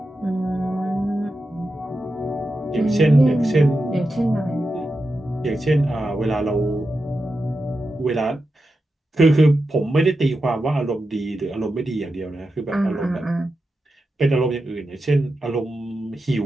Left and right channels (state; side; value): normal; both; correlation 0.89